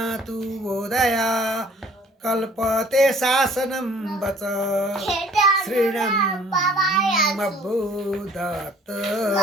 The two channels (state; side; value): normal; both; correlation 0.54